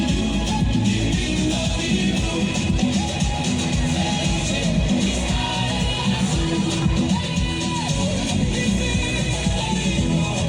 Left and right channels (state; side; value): identical; both; correlation 1.00